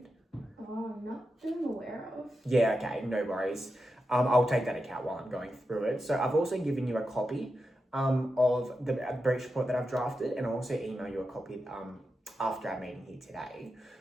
Not that I'm aware of. Yeah, okay, no worries. I'll take that account while I'm going through it. So I've also given you a copy of the breach report that I've drafted, and I'll also email you a copy after our meeting here today.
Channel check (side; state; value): both; normal; correlation 0.89